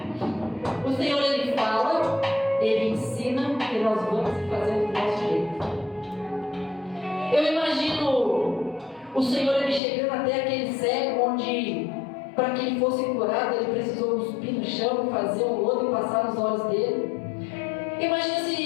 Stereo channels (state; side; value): drops out; right; at 9.8 s